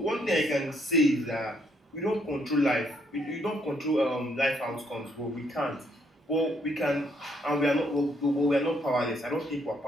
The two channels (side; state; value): both; normal; correlation 0.71